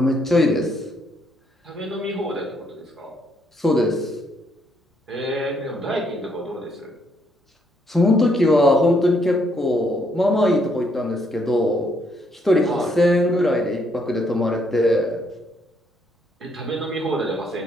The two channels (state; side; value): normal; both; correlation 0.72